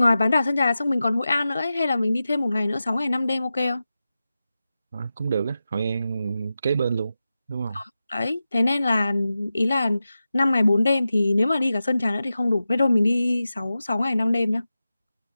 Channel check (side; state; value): both; inverted; correlation -0.93